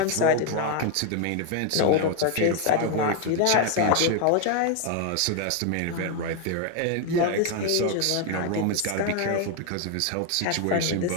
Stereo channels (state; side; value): different; both; correlation 0.01